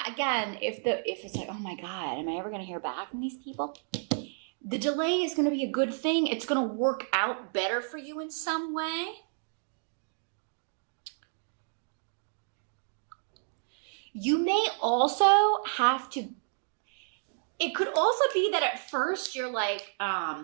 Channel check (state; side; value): silent; left; digital silence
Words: again, if it's like, oh my God, am I ever going to hear back from these people? The delay is going to be a good thing. It's going to work out better for you in some way. You may also have to, it could also be that at first you're like,